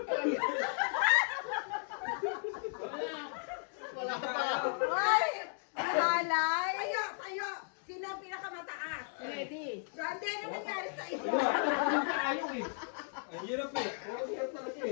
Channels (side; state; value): right; silent; 54 dB below the other